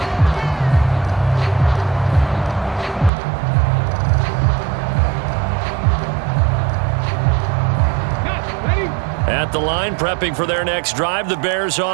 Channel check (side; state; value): left; drops out; at 3.1 s